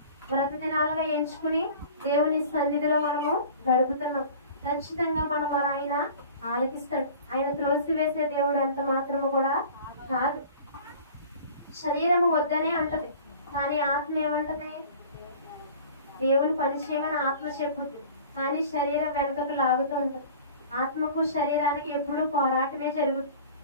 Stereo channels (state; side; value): inverted; both; correlation -0.44